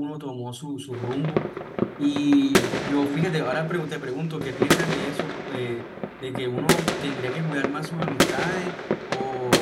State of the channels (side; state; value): both; identical; correlation 1.00